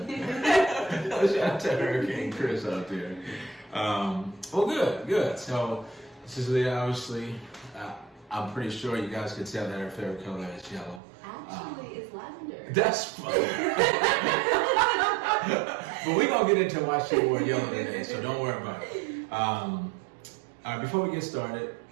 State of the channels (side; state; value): left; drops out; at 11.0 s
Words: to Hurricane Chris out there. Well, good. So this is Liyah, obviously. I'm pretty sure you guys could tell that her favorite color is yellow. Actually, it's lavender. That's funny. But we're going to get into why she wore yellow today, so don't worry about it. All right, before we get started,